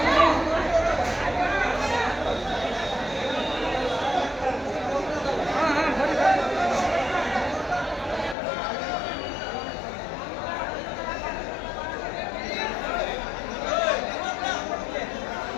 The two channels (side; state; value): right; drops out; at 8.3 s